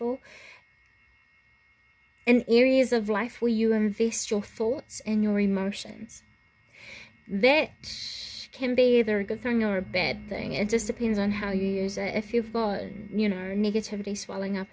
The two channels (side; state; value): both; identical; correlation 1.00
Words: in areas of life where you invest your thoughts and your emotions. That can be either a good thing or a bad thing. It just depends on how you use it. If you've got, you know, negativity swelling up